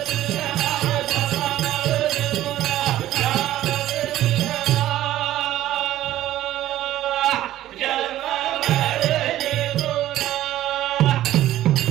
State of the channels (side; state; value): left; quieter; 13.8 dB